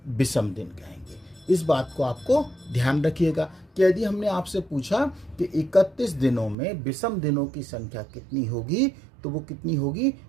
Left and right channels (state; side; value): drops out; left; at 6.6 s